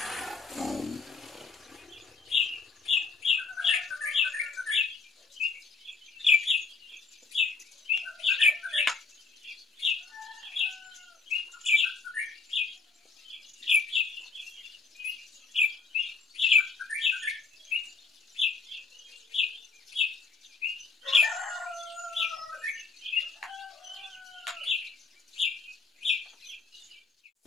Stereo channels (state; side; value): quieter; right; 4.5 dB